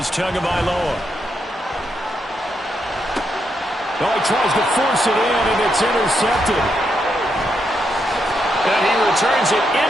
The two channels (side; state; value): both; normal; correlation 0.80